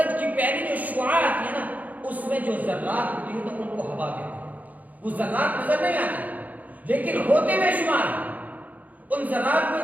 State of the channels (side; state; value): left; late; 0.079 ms